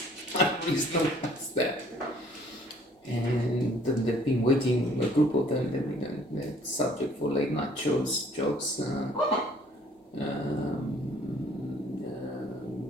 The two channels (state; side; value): normal; both; correlation 0.58